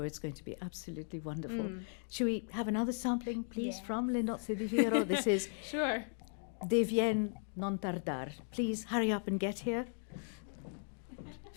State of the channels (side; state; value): right; silent; 53 dB below the other